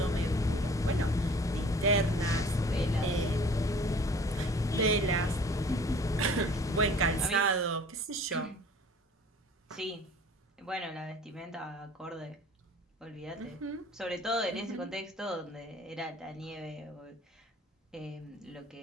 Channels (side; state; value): both; normal; correlation 0.49